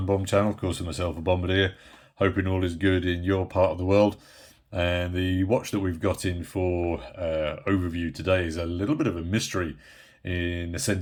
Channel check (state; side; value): identical; both; correlation 1.00